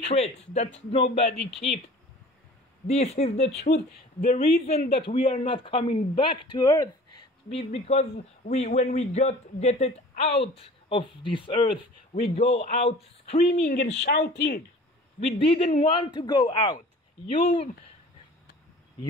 that nobody keeps. This is the truth. The reason that we are not coming back to earth is because when we get it out of this earth, we go out screaming and shouting. We didn't want to go out. You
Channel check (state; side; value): normal; both; correlation 0.45